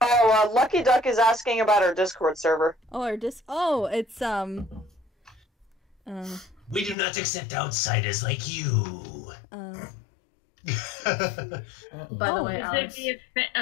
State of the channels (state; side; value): drops out; right; at 7.0 s